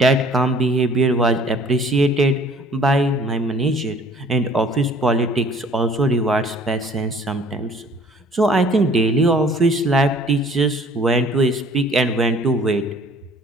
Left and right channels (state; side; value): normal; both; correlation 0.53